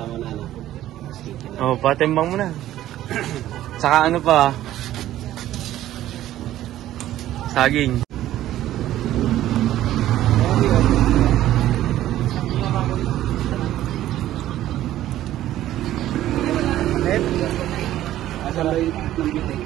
mo na. Oh, patimbang mo na. Saka ano pa? Saging.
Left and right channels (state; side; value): quieter; left; 13.5 dB